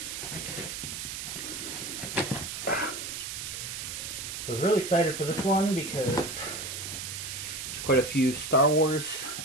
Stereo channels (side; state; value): right; noise; hiss, 6 dB below the sound